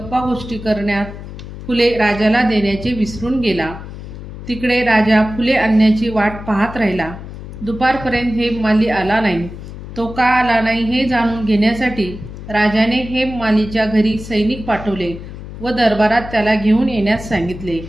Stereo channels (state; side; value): noise; left; hum, 12 dB below the sound